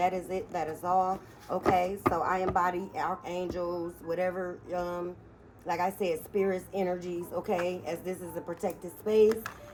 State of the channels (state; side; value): identical; both; correlation 1.00